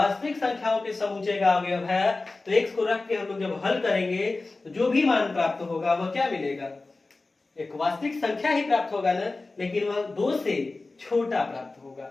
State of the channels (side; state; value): right; quieter; 3.4 dB